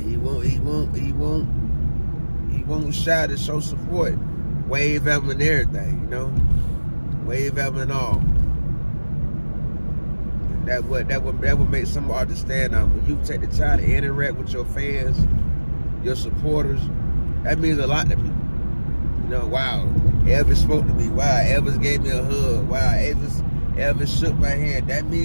won't shy to show support. Wave at him and everything, you know? Wave at him and all. And that would make some artists stand out. When you take the time to interact with your fans, your supporters, that means a lot to people. You know, wow, Elvis spoke to me. Wow, Elvis gave me a hug. Wow, Elvis shook my hand. That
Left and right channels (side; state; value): both; inverted; correlation -1.00